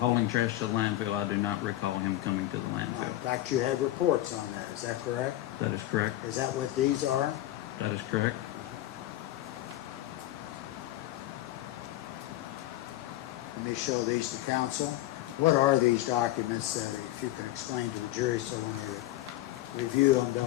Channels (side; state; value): right; quieter; 15.2 dB